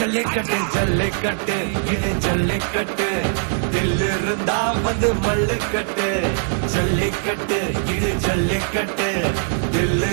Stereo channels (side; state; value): left; silent; digital silence